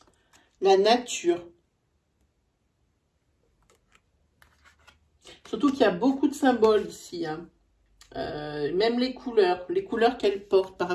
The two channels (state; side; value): identical; both; correlation 1.00